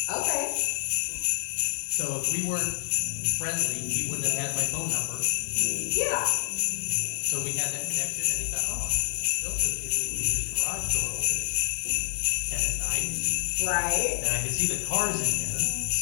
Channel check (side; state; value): right; silent; digital silence